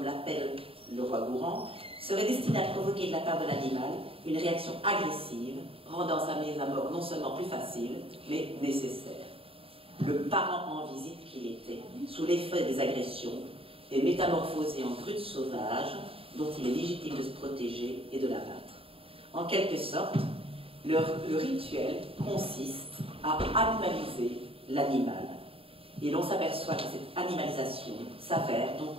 l'appelle Leroy-Gourand, serait destinée à provoquer de la part de l'animal une réaction agressive, rendant sa mise à mort non seulement plus facile, mais nécessaire. Le parent en visite qu'il était, sous l'effet des agressions, est métamorphosé en brute sauvage, dont il est légitime de se protéger et de l'abattre. En quelque sorte, le rituel consiste à animaliser l'animal. Et l'on s'aperçoit que cette animalisation s'avère donc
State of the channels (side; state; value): left; late; 0.27 ms